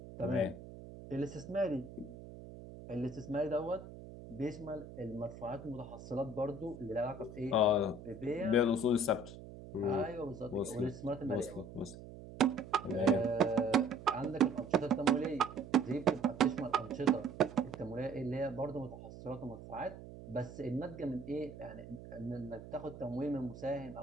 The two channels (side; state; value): right; noise; hum, 14 dB below the sound